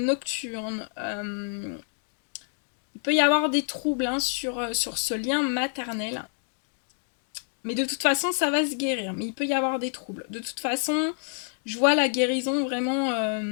Il peut y avoir des troubles, hein, sur ce lien maternel. Mais de toute façon, ça va se guérir. Mais il peut y avoir des troubles. De toute façon, je vois la guérison vraiment...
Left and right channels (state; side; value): silent; right; 60 dB below the other